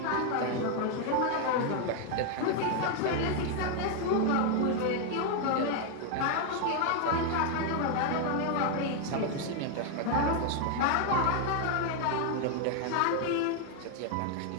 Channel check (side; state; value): both; different; correlation 0.01